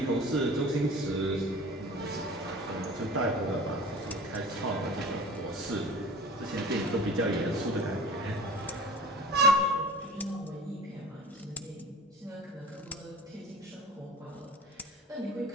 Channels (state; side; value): normal; both; correlation 0.40